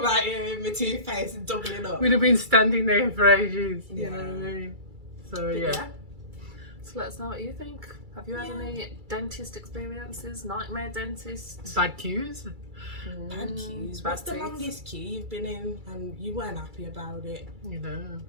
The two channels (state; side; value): late; left; 2.3 ms